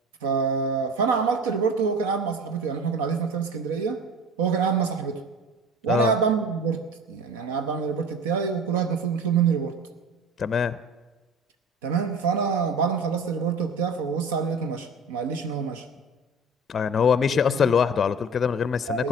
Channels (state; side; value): normal; both; correlation 0.38